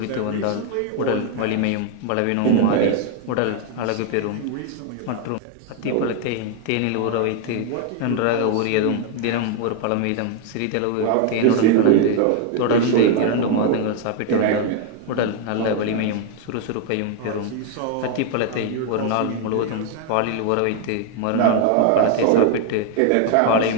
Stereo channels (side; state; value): both; different; correlation 0.00